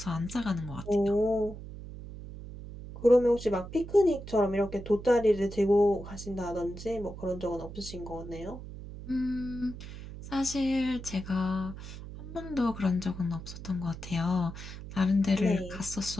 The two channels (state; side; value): noise; right; hum, 12 dB below the sound